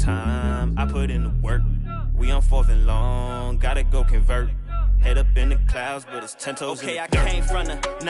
I put in the work. We on 4th and long. Gotta go convert. Head up in the clouds, but it's 10 toes in the dirt. Okay, I came from the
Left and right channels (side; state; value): both; identical; correlation 1.00